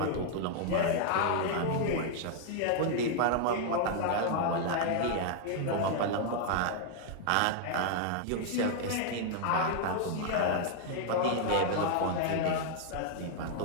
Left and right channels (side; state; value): both; different; correlation 0.00